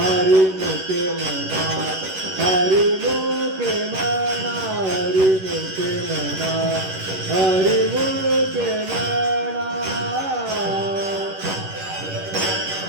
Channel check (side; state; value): left; late; 11 ms